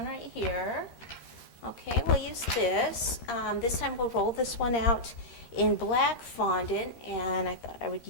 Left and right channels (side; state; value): right; late; 13 ms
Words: right here. Okay, we'll use this. This time we'll roll this one out in black fondant, and I thought I would